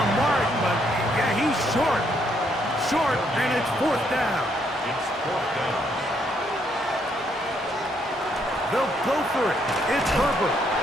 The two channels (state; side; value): normal; both; correlation 0.72